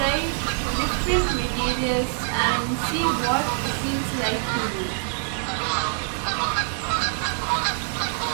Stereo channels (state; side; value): silent; left; 62 dB below the other